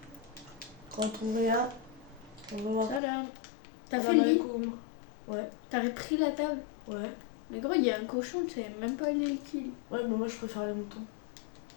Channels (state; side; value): drops out; right; at 3.0 s